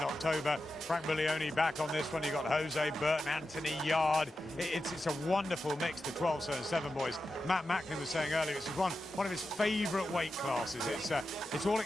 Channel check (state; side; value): normal; both; correlation 0.91